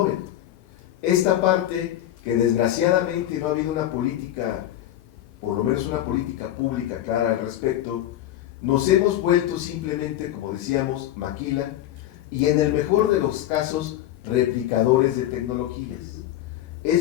Esta parte que desgraciadamente no ha habido una política, por lo menos una política pública clara al respecto, nos hemos vuelto simplemente, como decíamos, maquila, y en el mejor de los casos, replicadores de tecnologías.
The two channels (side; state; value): right; quieter; 12.8 dB